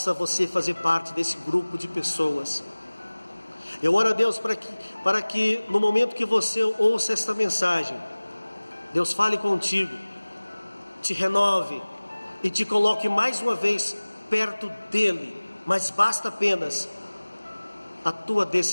você fazer parte desse grupo de pessoas. Eu oro a Deus para que no momento que você ouça esta mensagem, Deus fale contigo, te renove e te coloque mais uma vez perto dEle, mas basta apenas a tua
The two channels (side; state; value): both; inverted; correlation -1.00